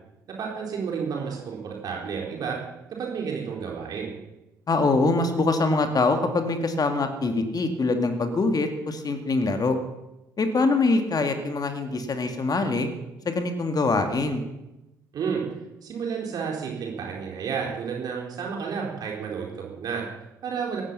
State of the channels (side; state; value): both; normal; correlation 0.64